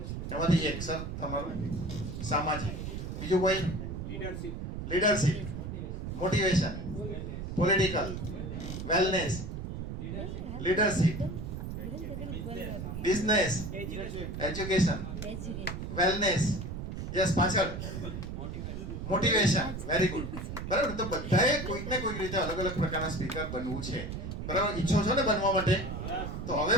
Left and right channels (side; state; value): right; noise; rumble, 6 dB below the sound